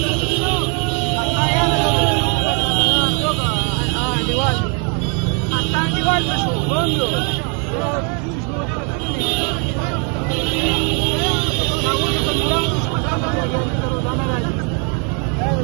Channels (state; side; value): quieter; left; 36.5 dB